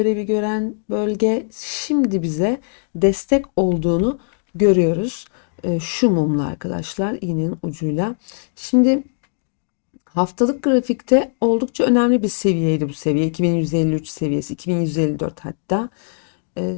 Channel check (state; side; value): silent; right; digital silence